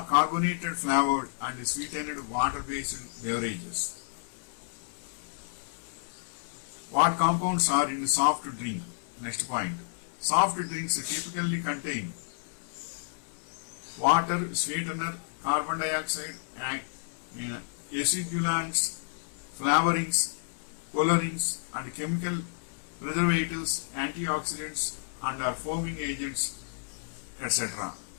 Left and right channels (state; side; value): silent; right; 57 dB below the other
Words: flavored and sweetened water-based beverages. What compounds are in soft drink? Next point. Soft drinks typically contain water, sweetener, carbon dioxide, acidulants, flavorings, colorings, and chemical preservatives, antioxidants, and are foaming agents, etc.